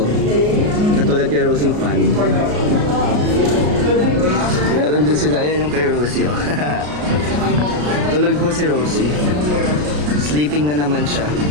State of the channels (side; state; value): left; late; 33 ms